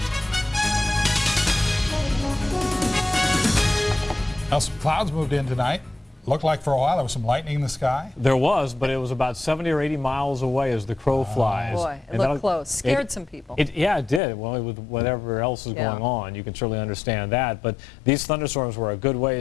Now, some clouds moved in tonight. Looked like for a while there was some lightning in the sky. There was, but it was about 70 or 80 miles away as the crow flies. Boy, it looked close. Scared some people. Yeah, it did. Well, with whatever else is going on, you can certainly understand that. But these thunderstorms were a good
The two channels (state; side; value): drops out; right; at 14.2 s